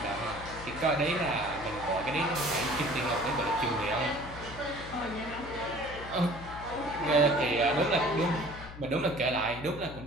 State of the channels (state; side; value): noise; left; hum, 13 dB below the sound